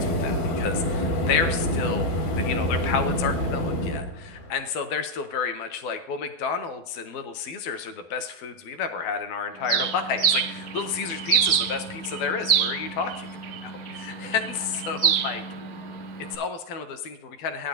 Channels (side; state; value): right; late; 12 ms